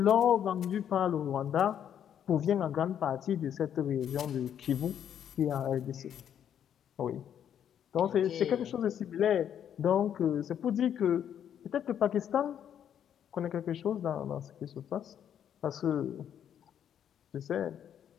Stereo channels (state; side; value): quieter; right; 9.3 dB